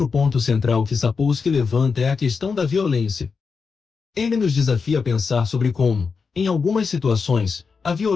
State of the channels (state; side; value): quieter; right; 5.2 dB